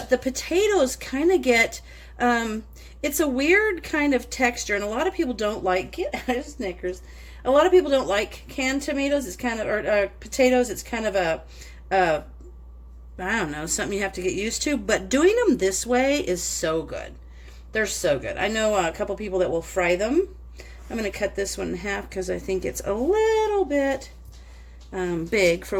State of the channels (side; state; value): both; identical; correlation 1.00